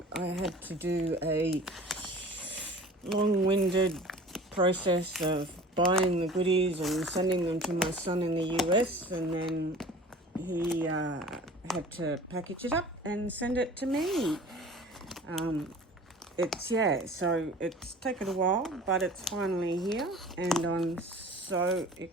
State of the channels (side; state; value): both; normal; correlation 0.43